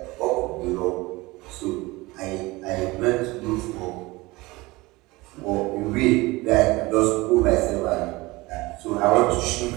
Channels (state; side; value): quieter; left; 21.7 dB